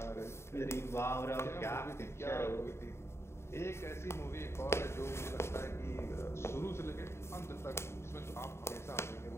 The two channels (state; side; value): late; right; 0.13 ms